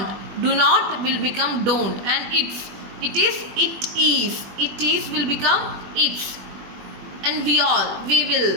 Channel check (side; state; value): left; late; 21 ms